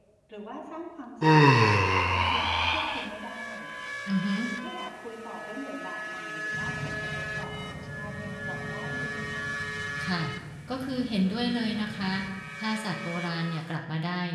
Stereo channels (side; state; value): both; identical; correlation 1.00